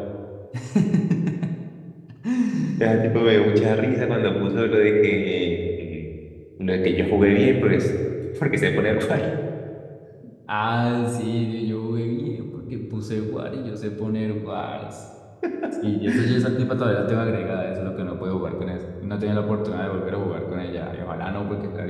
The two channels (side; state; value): both; identical; correlation 1.00